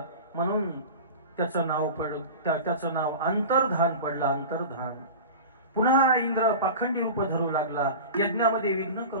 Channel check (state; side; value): inverted; both; correlation -0.32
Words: म्हणून त्याचं नाव अंतर्धान पडलं, अंतर्धान। पुन्हा इंद्र पाखंडी रूप धरू लागला, यज्ञामध्ये विघ्न